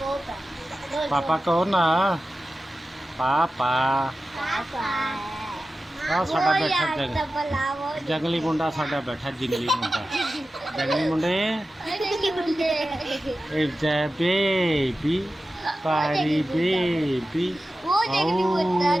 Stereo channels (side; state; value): both; normal; correlation 0.94